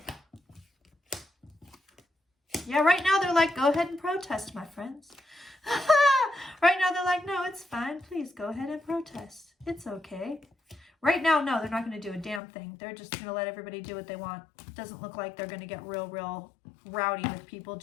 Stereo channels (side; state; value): right; drops out; at 12.4 s